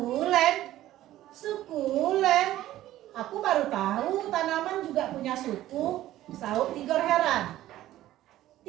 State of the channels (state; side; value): quieter; left; 14.3 dB